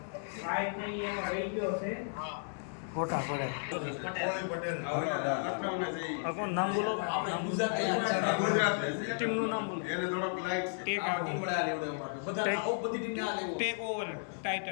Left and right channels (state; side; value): silent; right; digital silence